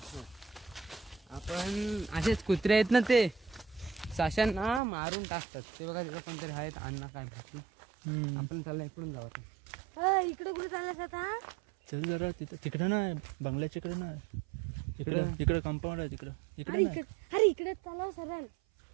आपण असेच कुत्रे आहेत ना ते साशांना मारून टाकतात ते बघा तिथं पण तरी आहेत अण्णा काय भेटलं आपण चालला इकडून जाऊ इकडे कुठे चाललास आता चल जरा तिकडं नाही बंगल्याच्या इकडे नाही इकडे कंपाऊंड आहे इकडे अरे इकडे चालव सरळ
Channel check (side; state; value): left; drops out; at 4.8 s